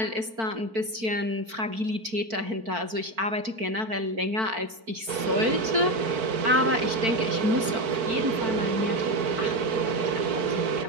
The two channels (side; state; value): left; late; 4.5 ms